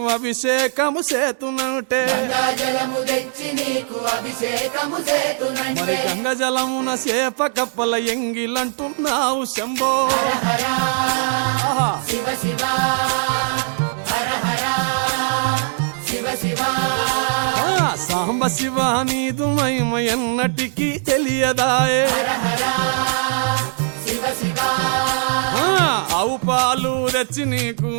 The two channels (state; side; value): silent; left; 66 dB below the other